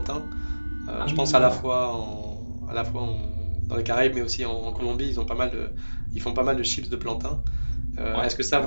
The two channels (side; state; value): both; inverted; correlation -1.00